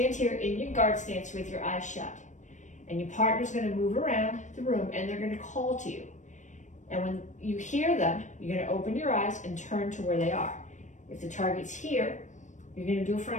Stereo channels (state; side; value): late; right; 0.35 ms